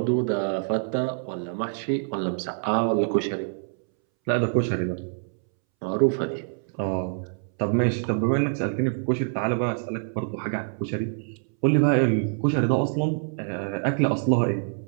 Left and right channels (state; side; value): silent; left; 61 dB below the other